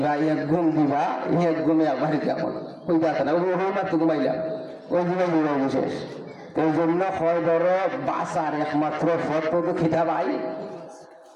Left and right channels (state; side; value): identical; both; correlation 1.00